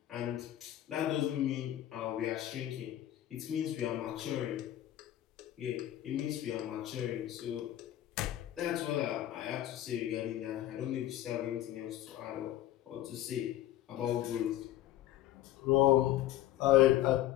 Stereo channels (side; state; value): right; quieter; 13.4 dB